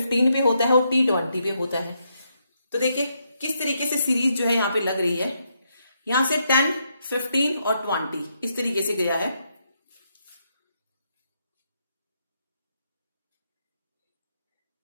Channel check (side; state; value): both; inverted; correlation -0.79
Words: पे होता है और T 20 पे होता है। तो देखिए किस तरीके से सीरीज जो है यहाँ पे लग रही है, यहां से 10, 15 और 20 इस तरीके से गया है।